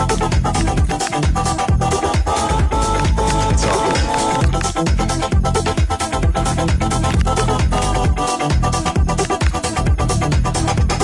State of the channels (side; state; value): both; identical; correlation 1.00